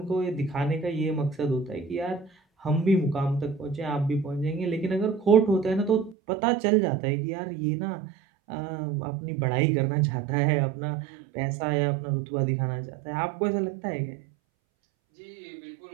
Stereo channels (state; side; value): drops out; left; at 6.2 s